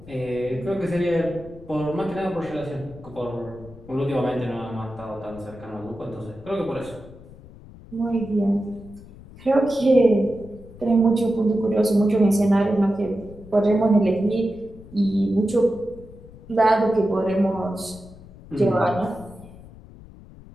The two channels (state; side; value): noise; left; rumble, 19 dB below the sound